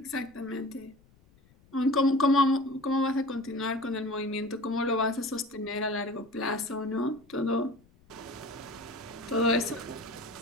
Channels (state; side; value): noise; left; rumble, 29 dB below the sound